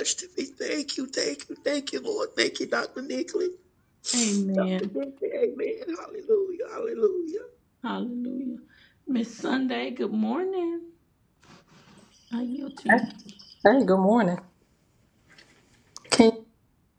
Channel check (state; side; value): identical; both; correlation 1.00